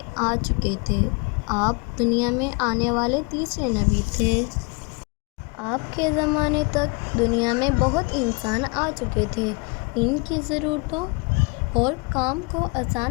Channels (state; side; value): quieter; right; 30.8 dB